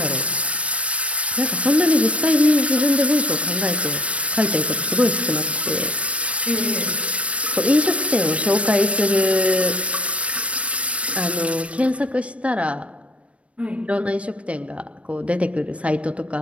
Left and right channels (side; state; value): left; late; 0.063 ms